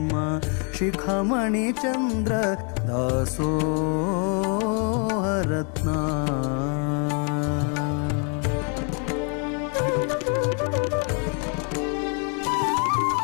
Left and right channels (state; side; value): quieter; right; 39.1 dB